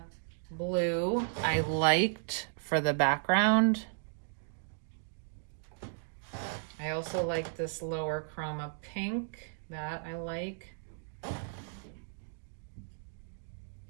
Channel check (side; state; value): left; silent; digital silence